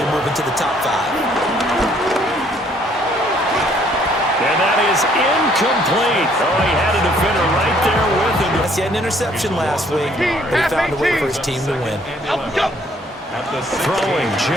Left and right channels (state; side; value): normal; both; correlation 0.63